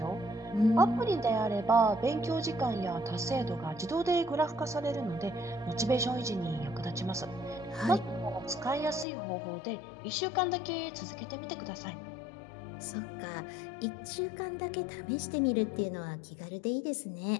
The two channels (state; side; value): drops out; right; at 9.1 s